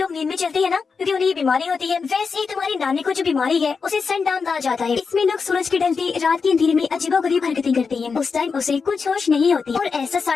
नींद में चलते हैं ना, क्योंकि उन्हें ये बीमारी होती है, वैसे ही तुम्हारी नानी को जो बीमारी है उसे सनडाउन कहा जाता है। इसमें लोग सूरज के ढलते रात के अंधेरे में अजीबोगरीब हरकतें करते हैं। उस टाइम उसे कुछ होश नहीं होती और ऐसा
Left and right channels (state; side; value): quieter; right; 5.2 dB